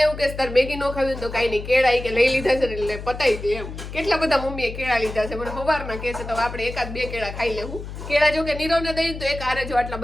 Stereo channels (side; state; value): left; noise; hum, 10 dB below the sound